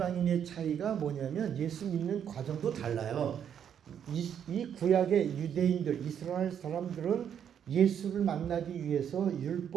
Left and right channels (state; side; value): quieter; left; 8.7 dB